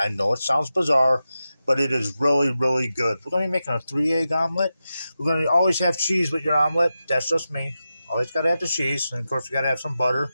know it sounds bizarre, but it is really, really good. We're going to be making a 3-egg omelet. We're going to always have cheese with your omelet. That's just me. Always got to have the cheese. And, of course, we got to have some butter.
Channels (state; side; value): inverted; both; correlation -0.91